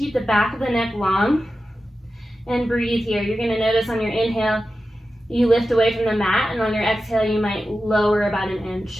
the back of the neck long. And breathe here. You're going to notice on your inhale, you lift away from the mat, and on your exhale, you might lower about an inch.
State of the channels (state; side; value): normal; both; correlation 0.93